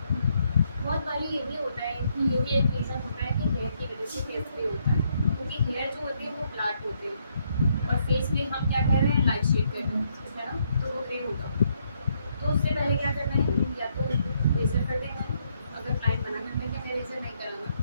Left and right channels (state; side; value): inverted; both; correlation -0.74